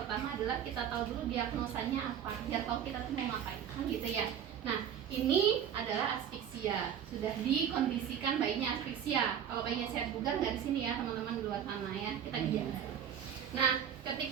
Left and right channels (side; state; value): left; quieter; 8.9 dB